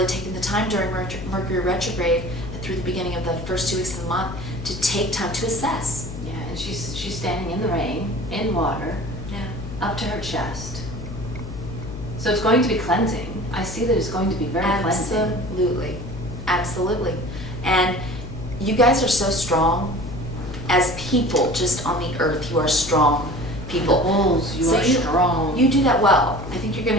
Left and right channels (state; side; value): noise; left; hum, 10 dB below the sound